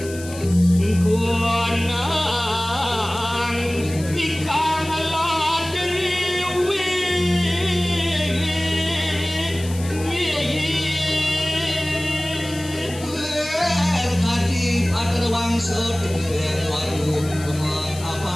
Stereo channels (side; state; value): left; noise; hiss, 15 dB below the sound